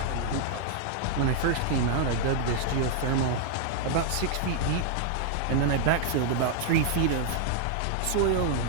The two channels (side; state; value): both; different; correlation 0.00